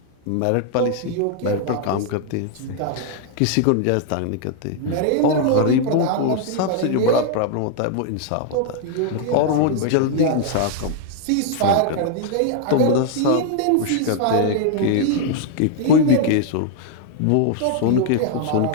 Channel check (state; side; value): different; both; correlation 0.00